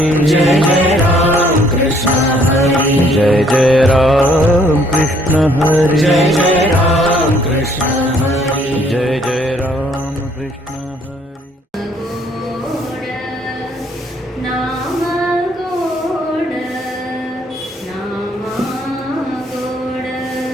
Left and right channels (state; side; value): normal; both; correlation 0.63